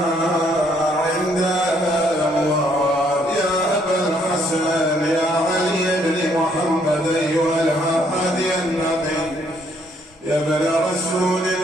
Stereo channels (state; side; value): normal; both; correlation 0.68